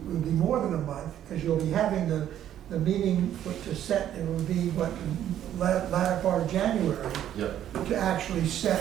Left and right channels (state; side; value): quieter; left; 11.1 dB